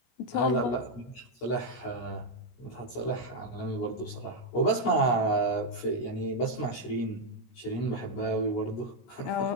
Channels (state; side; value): late; right; 16 ms